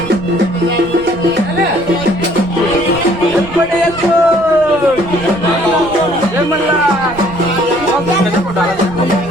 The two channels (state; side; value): noise; right; rumble, 17 dB below the sound